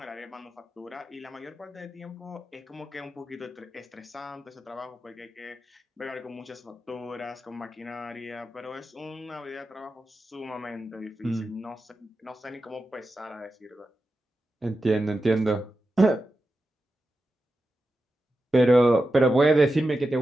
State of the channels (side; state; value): both; normal; correlation 0.91